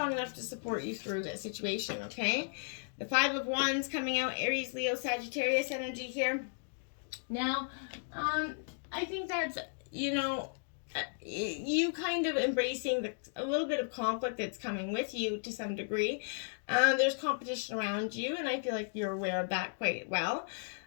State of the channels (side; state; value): right; silent; digital silence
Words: enough to support you through this situation, okay? The Five of Wands coming out, Aries, Leo, Sagittarius energy here. Now, I think that's, you kind of embracing a little bit of conflict that's coming with you to some degree. There's competition around you, and I feel like you're aware of that quite well.